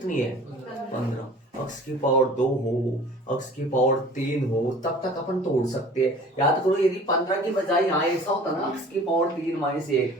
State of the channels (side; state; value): both; normal; correlation 0.46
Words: है 15, अक्ष की पावर 2 हो, अक्ष की पावर 3 हो, तब तक अपन तोड़ सकते हैं। याद करो, यदि 15 की बजाय यहाँ ऐसा होता ना, अक्ष की पावर 3 माइनस 1,